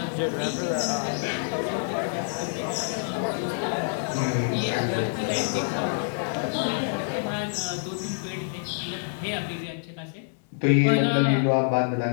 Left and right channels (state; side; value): silent; right; digital silence